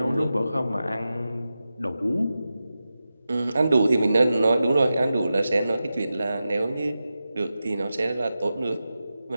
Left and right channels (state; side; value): inverted; both; correlation -0.92